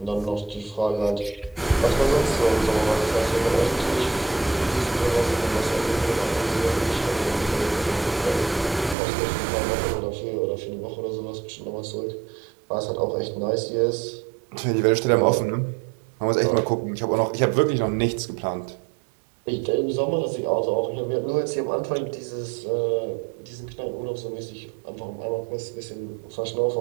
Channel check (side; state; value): left; drops out; at 9.0 s